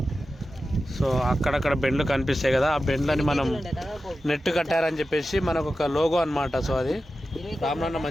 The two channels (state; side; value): normal; both; correlation 0.93